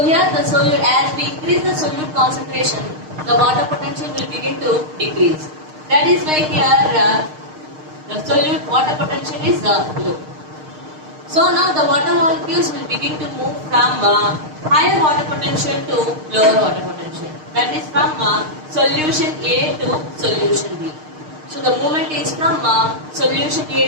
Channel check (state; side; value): late; left; 6.5 ms